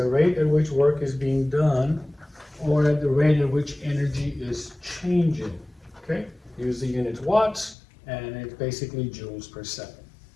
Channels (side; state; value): right; drops out; at 7.8 s